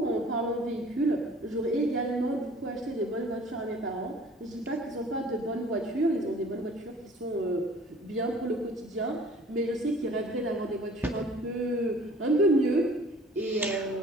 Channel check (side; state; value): both; normal; correlation 0.50